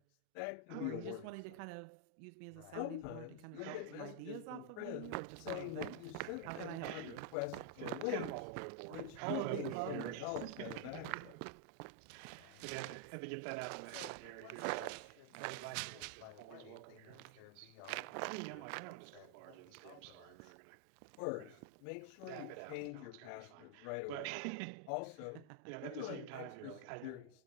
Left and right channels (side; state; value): both; different; correlation 0.00